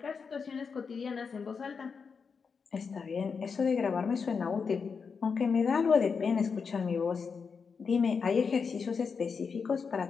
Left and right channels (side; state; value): right; quieter; 5.6 dB